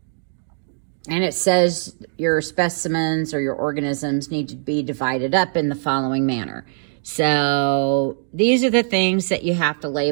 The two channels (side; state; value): left; silent; digital silence